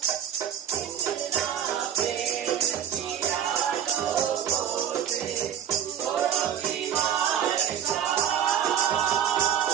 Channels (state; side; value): quieter; left; 9.3 dB